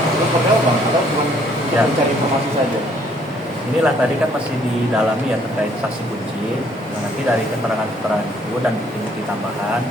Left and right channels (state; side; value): normal; both; correlation 0.64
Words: seperti apa Bang? Atau cuma Ya. mencari informasi saja? Inilah tadi kan masih didalami ya terkait saksi kunci. Nah, nanti dari keterangan-keterangan itu dan bukti-bukti tambahan